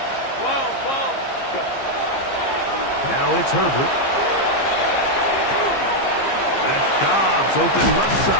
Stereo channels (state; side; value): late; right; 15 ms